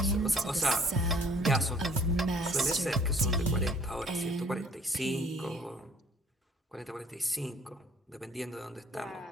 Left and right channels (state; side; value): normal; both; correlation 0.55